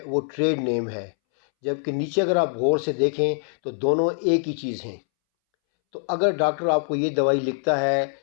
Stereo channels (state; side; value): silent; right; 63 dB below the other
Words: वो ट्रेड नेम है, जबकि नीचे अगर आप गौर से देखें तो दोनों एक ही चीज़ हैं। तो अगर डॉक्टर आपको ये दवाई लिखता है